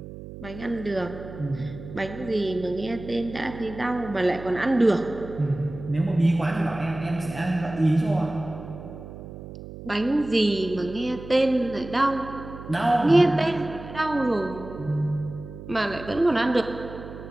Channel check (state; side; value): noise; right; hum, 13 dB below the sound